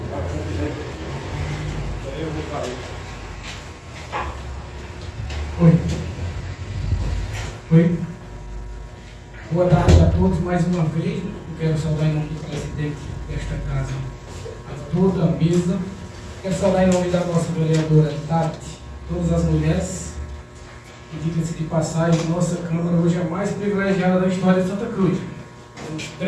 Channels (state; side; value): identical; both; correlation 1.00